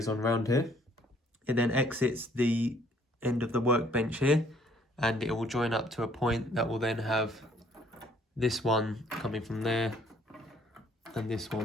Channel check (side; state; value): both; normal; correlation 0.62